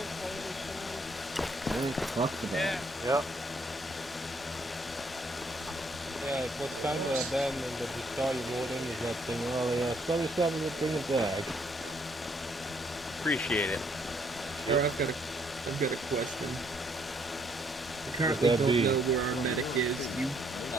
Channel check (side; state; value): both; normal; correlation 0.68